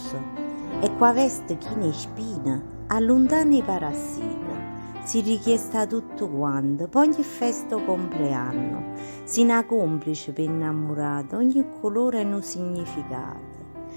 E qua veste chi ne spina, allontana i parassiti. Si richiesta tutto quanto, poi ogni festa o compleanno. Si una complice per innamorata, ogni colore e un significato.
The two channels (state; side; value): inverted; both; correlation -1.00